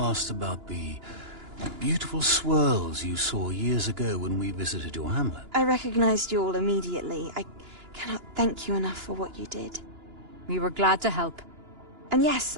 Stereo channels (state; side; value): late; left; 2.9 ms